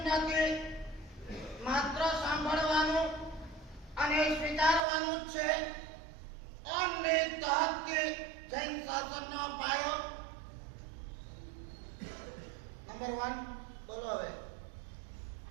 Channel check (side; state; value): left; drops out; at 4.8 s